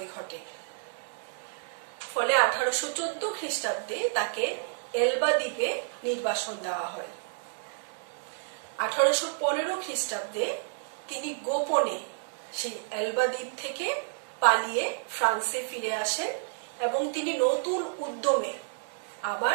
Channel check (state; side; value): silent; left; digital silence